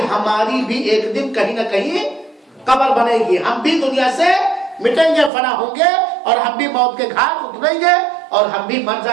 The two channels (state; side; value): drops out; left; at 5.3 s